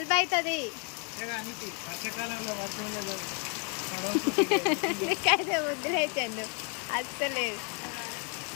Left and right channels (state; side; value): quieter; right; 37.5 dB